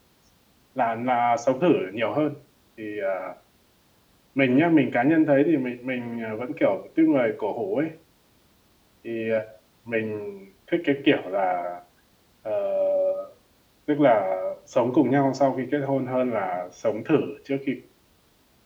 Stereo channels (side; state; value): both; identical; correlation 1.00